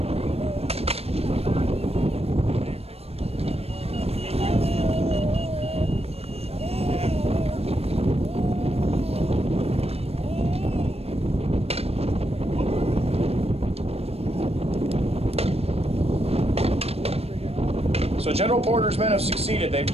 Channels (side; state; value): left; late; 0.29 ms